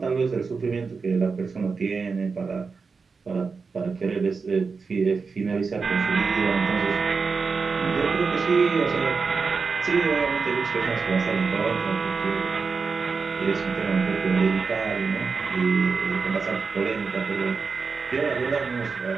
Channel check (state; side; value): quieter; left; 4.9 dB